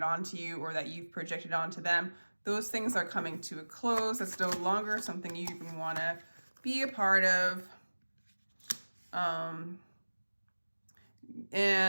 onto you, or that you've projected onto them. Those things are coming to a close. It's no longer something you even want to be a part of.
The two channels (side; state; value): both; inverted; correlation -1.00